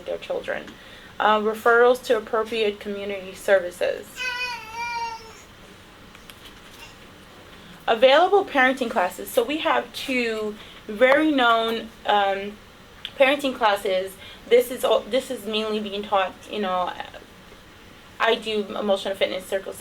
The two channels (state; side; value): identical; both; correlation 1.00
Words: their children. Referrals to appropriate community services. Available parenting classes. So we have two very known parenting classes This is mainly being taught, I do emotional fitness, circle